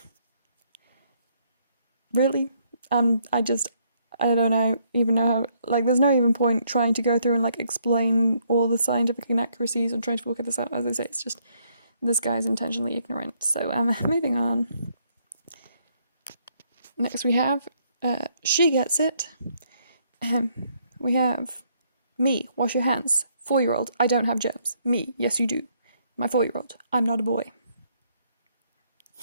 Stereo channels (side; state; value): both; inverted; correlation -0.70